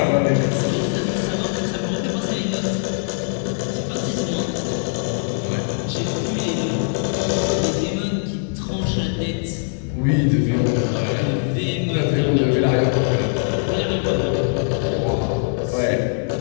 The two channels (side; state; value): right; silent; digital silence